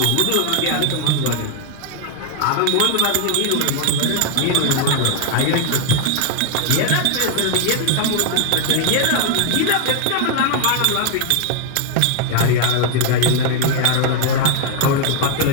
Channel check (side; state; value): both; different; correlation 0.00